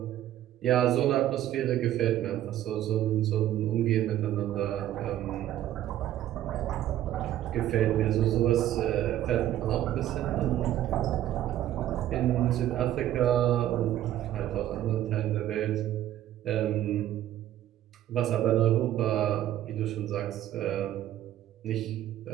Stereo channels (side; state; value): left; quieter; 12.6 dB